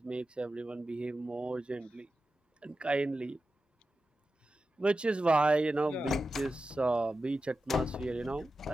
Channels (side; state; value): both; normal; correlation 0.92